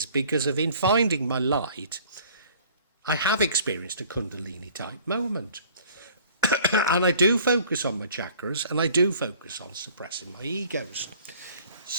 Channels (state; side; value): inverted; both; correlation -0.52